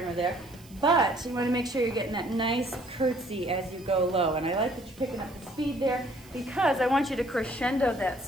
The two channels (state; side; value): noise; right; hiss, 24 dB below the sound